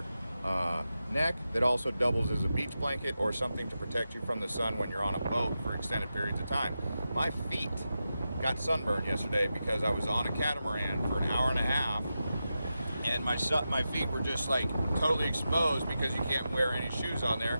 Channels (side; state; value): both; inverted; correlation -0.90